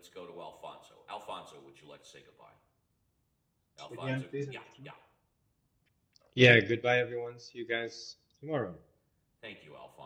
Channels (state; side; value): identical; both; correlation 1.00